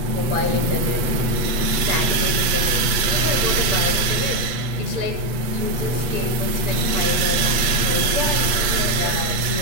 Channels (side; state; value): left; late; 8.0 ms